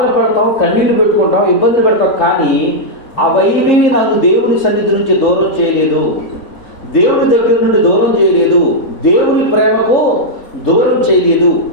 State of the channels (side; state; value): right; late; 3.7 ms